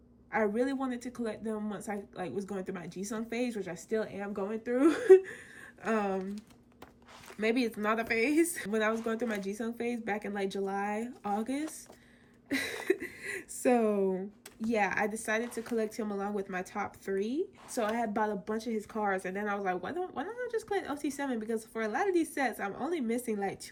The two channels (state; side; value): identical; both; correlation 1.00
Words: wanted to collect them once I was going through my Jisung phase, which I still am going through. Maybe it's not a phase. When I was going through my Jisung phase back in July, August. So yeah, I decided to collect him along with my top 3. So I had bought a bunch of his cards, and then I was like, why don't I just collect OT7? Because for a lot of these sets, I'm only missing